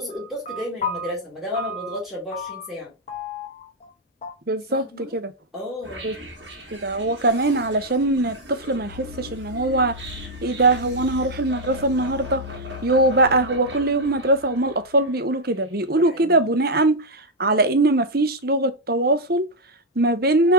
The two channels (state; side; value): normal; both; correlation -0.02